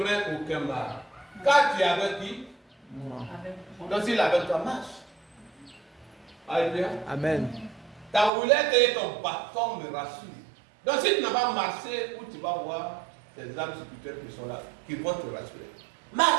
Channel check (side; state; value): left; drops out; at 8.3 s